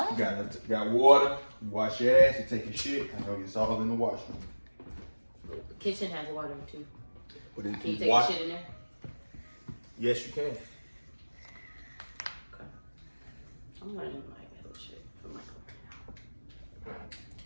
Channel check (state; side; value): inverted; both; correlation -1.00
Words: You got water. You wash your ass. You take your shit. I know it's all in the washroom. The kitchen has water too. But if Can you you take wash, your shit in there? yes, you can. Okay. I'm learning like that shit from my career.